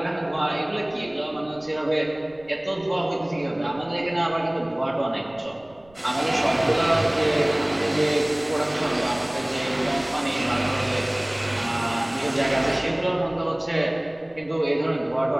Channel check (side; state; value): right; noise; rumble, 28 dB below the sound